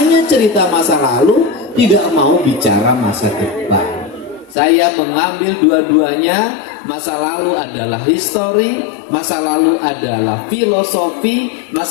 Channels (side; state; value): right; drops out; at 4.5 s